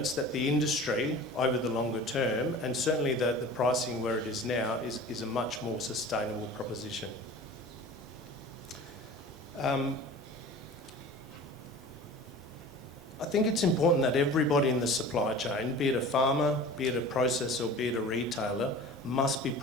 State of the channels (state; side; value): normal; both; correlation 0.39